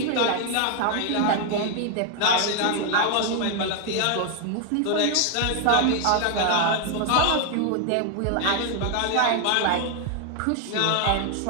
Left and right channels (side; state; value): both; different; correlation 0.00